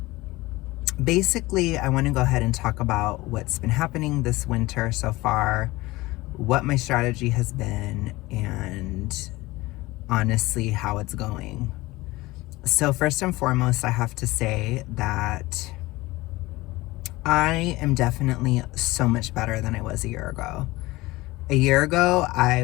basically I want to go ahead and talk about what's been happening this winter so far, what my strategy has been, and honestly how it's going. So first and foremost, I have to say that I am definitely so much better than I was a year ago. A year ago,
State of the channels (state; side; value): quieter; right; 20.1 dB